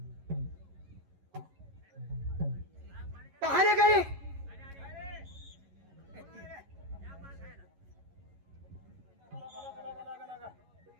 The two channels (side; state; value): left; late; 11 ms